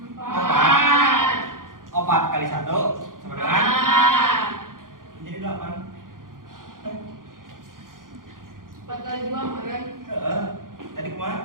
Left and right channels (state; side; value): late; left; 0.90 ms